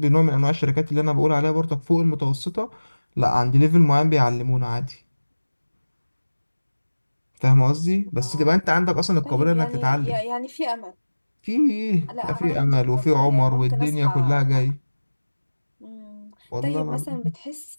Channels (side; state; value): both; inverted; correlation -1.00